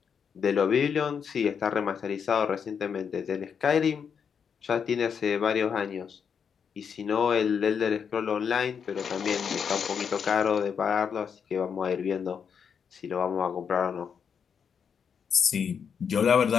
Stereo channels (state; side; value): quieter; right; 6.9 dB